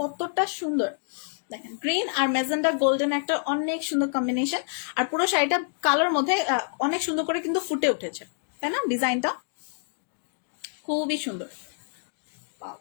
সুন্দর। দেখেন গ্রিন আর মেজেন্ডা গোল্ডেন একটা অনেক সুন্দর কম্বিনেশন, আর পুরো শাড়িটা কালার মধ্যে অনেক সুন্দর করে কিন্তু ফুটে উঠেছে, তাই না? ডিজাইনটা খুবই সুন্দর।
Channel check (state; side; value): silent; right; digital silence